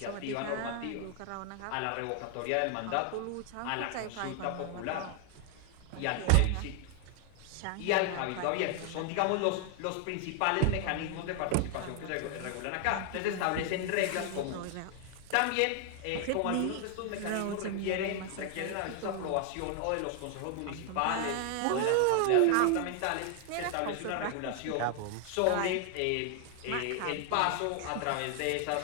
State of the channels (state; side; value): different; both; correlation 0.00